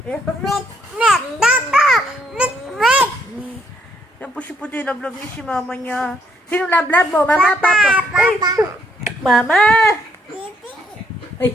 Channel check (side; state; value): both; normal; correlation 0.70